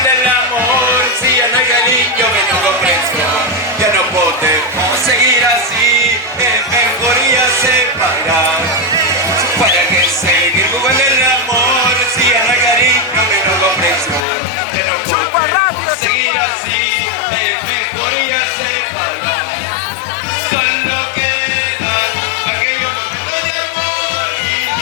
el amor si ya no hay cariño, menos comprensión? Ya no podemos seguir así, es mejor ya separar. ¿Para qué seguir jugando el amor si ya no hay cariño, menos comprensión? Ya no podemos seguir así, es mejor ya separar. Solo queda aquellos momentos de amor y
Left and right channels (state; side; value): drops out; right; at 14.2 s